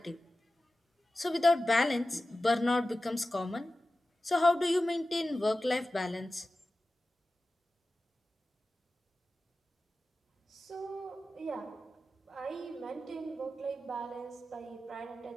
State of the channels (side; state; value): both; normal; correlation 0.94